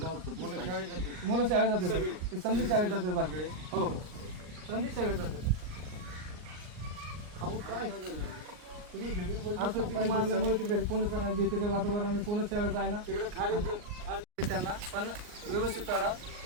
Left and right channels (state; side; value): late; left; 39 ms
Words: मुलं शाळेत जाते सर. ते समधी शाळेत जाते बाकी. हो समधी शाळेत जाते. असं तिथे मारल्यामुळे ते घरी कोणच नाही. भीतीचं वातावरण कोणच शाळेत आहे ना त्यांना. पण व्यवस्थित चढा